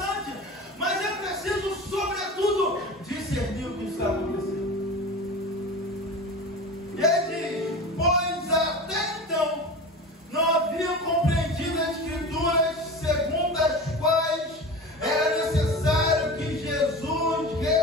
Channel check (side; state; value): both; normal; correlation 0.32